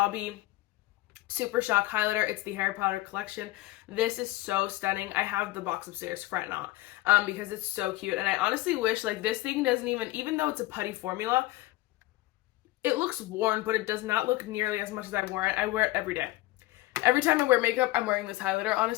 Super Shock Highlighter. It's the Harry Potter collection. This is so stunning. I have the box upstairs, fret not, because it's so cute. And I honestly wish, like, this thing doesn't even though it's a putty formula, it looks worn, but it does not look nearly as much as I wear it. I wear it every day. Every time I wear makeup, I'm wearing this highlighter,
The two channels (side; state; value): right; quieter; 18.4 dB